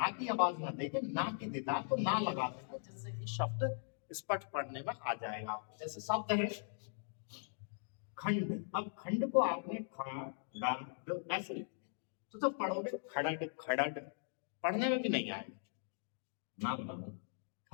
की आवाज ना देके ना की देता है, तो ना लगा देता है, जिससे कि शब्द स्पष्ट पढ़ने में आ जाएगा आपको। जैसे शब्द है खंड, अब खंड को आपने खड़ ऐसे लिखा, तो जब पढ़ोगे खड़ड खड़ड पढ़ने में भी नहीं आएगा, ना पढ़ो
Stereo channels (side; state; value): right; silent; digital silence